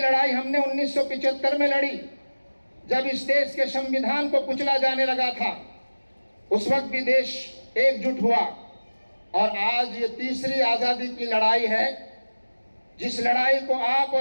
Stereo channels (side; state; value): both; inverted; correlation -1.00